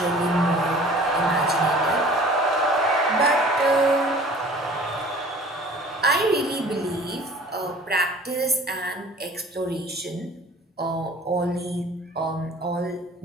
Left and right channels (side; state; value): both; normal; correlation 0.48